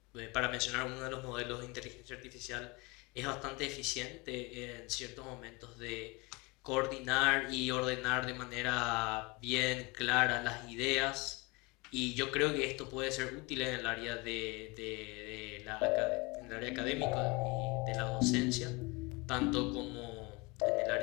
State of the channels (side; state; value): right; quieter; 26.3 dB